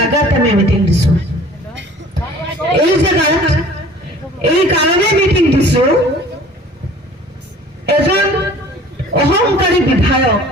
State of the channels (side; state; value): both; normal; correlation 0.48